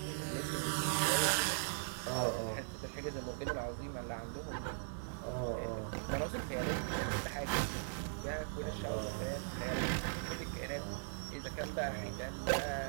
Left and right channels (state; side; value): silent; left; digital silence